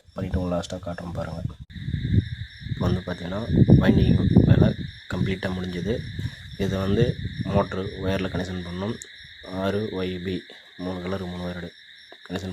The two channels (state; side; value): identical; both; correlation 1.00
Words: பண்ணிவிட்டு உங்களுக்கு லாஸ்ட்டாக காட்டுறோம் பாருங்கள். இப்போ வந்து பார்த்திங்கன்னா வைண்டிங் வேலை கம்ப்ளீட்டாக முடிஞ்சது. இதை வந்து மோட்ரு ஒயரில் கனெக்ஷன் பண்ணணும். RYB 3 கலர் 3 ஒயரோடு